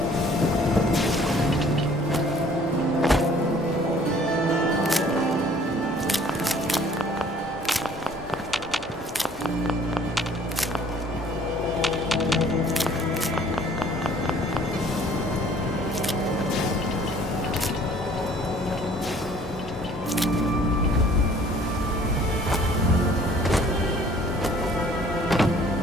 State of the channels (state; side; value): normal; both; correlation 0.55